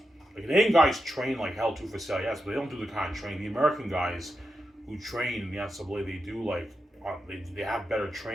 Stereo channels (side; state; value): both; normal; correlation 0.88